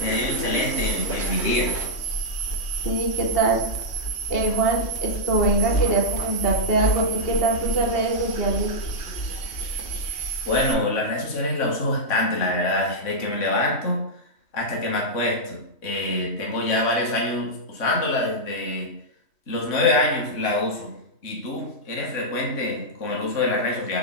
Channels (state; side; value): late; right; 3.1 ms